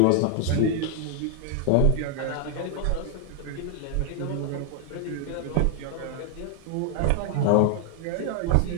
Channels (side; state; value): both; different; correlation 0.00